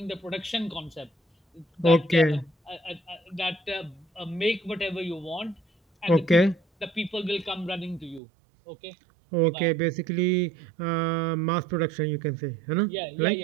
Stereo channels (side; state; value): left; drops out; at 8.2 s